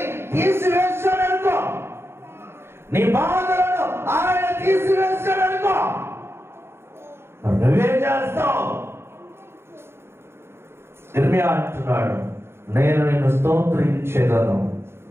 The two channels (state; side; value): late; left; 0.12 ms